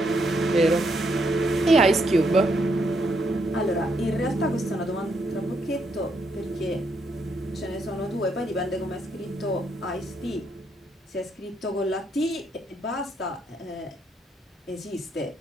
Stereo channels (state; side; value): normal; both; correlation 0.76